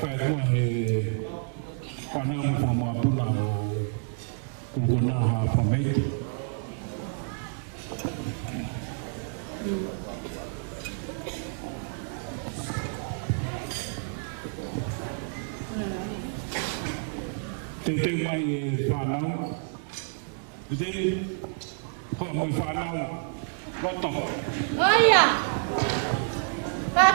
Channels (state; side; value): silent; left; 59 dB below the other